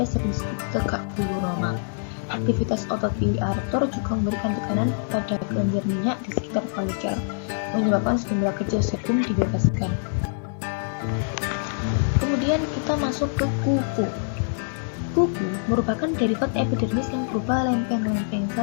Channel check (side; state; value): right; silent; digital silence